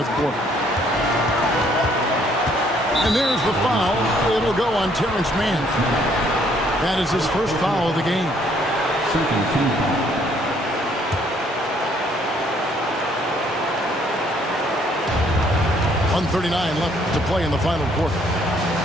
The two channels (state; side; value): normal; both; correlation 0.65